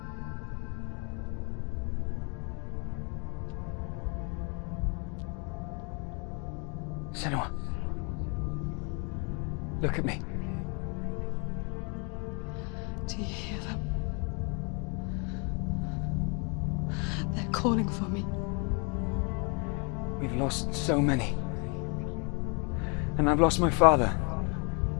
Senua. Look at me. Do you hear them? They're calling for me. We've lost so many. And I've lost my father.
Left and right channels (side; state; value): right; quieter; 34.8 dB